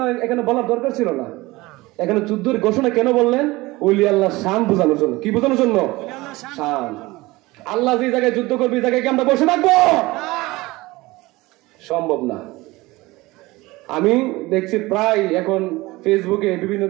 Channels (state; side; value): quieter; left; 20.7 dB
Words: এখানে বলার দরকার ছিল না। এখানে যুদ্ধের ঘোষণা কেন বললেন? ওলি আল্লাহর শান বোঝানোর জন্য। কি বোঝানোর জন্য? শান। আল্লাহ যে জায়গায় যুদ্ধ করবে, এই জায়গায় কি আমরা বসে থাকবো? সম্ভব না। আমি দেখছি প্রায় এখন ফেসবুকে বিভিন্ন